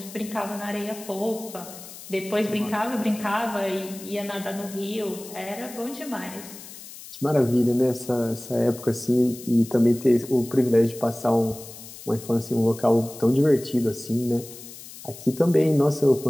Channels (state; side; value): noise; left; hiss, 15 dB below the sound